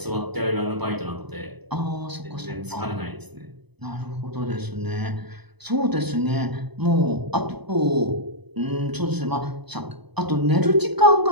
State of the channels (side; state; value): left; late; 0.99 ms